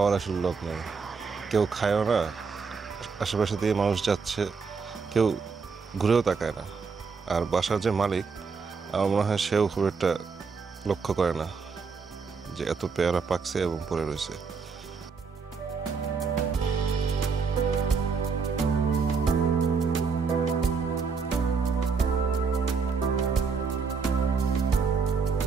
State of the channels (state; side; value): quieter; left; 5.2 dB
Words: আসলে লোক নেই, কেউ খায়ও না। আশেপাশে দিয়ে মানুষ যাচ্ছে, কেউ ঘুরেও তাকায় না। আর বাসার যে মালিক, আমার মনে হয় সেও খুব একটা লক্ষ্য করে না যে এত পেয়ারা পাকছে এবং পড়ে রয়েছে।